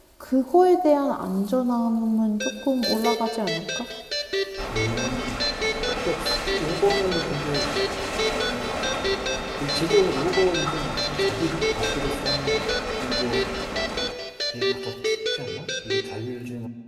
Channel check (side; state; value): both; identical; correlation 1.00